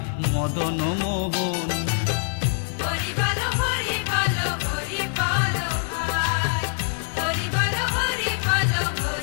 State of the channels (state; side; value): silent; right; 62 dB below the other